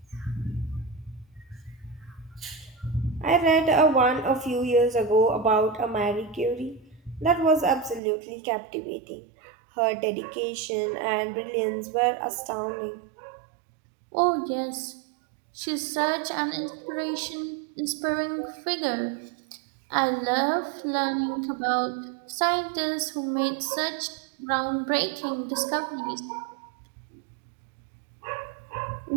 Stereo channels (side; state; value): left; drops out; at 8.0 s